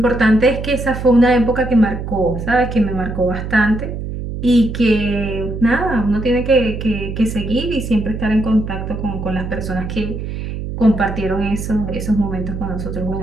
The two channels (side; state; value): right; noise; hum, 6 dB below the sound